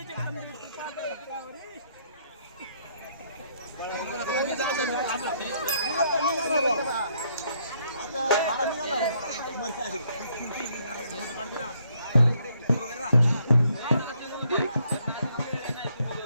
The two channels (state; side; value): inverted; both; correlation -0.70